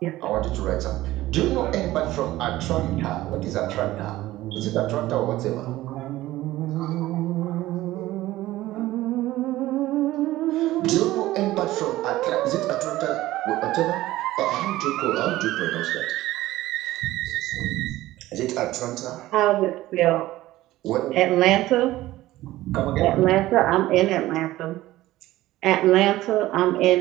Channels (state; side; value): quieter; left; 16.4 dB